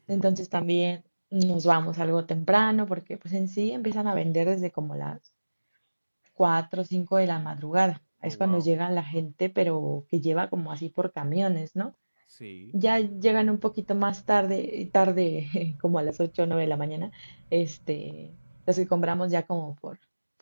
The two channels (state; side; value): inverted; both; correlation -1.00